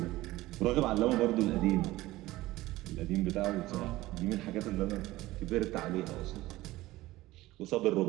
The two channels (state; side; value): quieter; left; 17.7 dB